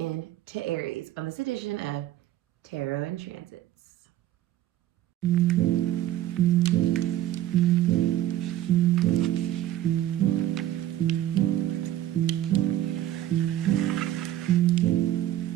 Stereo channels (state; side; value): quieter; left; 13.1 dB